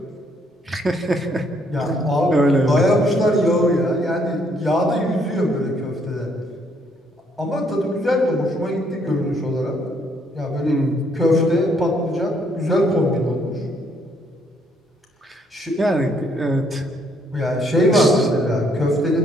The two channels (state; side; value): normal; both; correlation 0.69